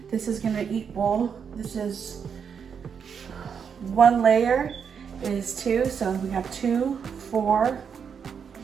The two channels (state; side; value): quieter; left; 6.9 dB